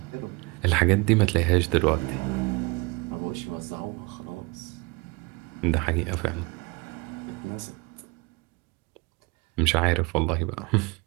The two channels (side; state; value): left; quieter; 26.2 dB